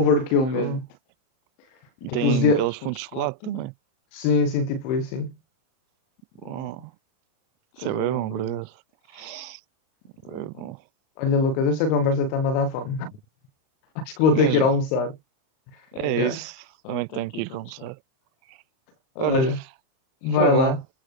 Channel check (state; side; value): late; right; 38 ms